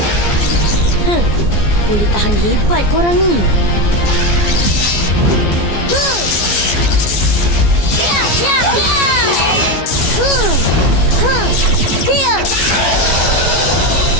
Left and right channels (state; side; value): late; right; 14 ms